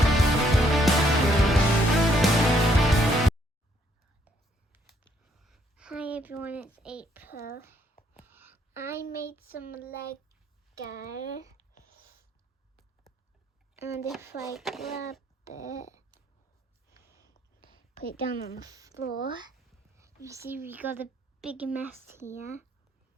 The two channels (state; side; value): normal; both; correlation 0.69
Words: Hi everyone, it's April. I made some Lego, and if I grab it, put it down on the floor, you see we got a big mess here.